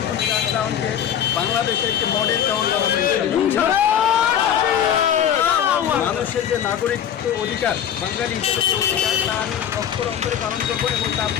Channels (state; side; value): quieter; right; 9.4 dB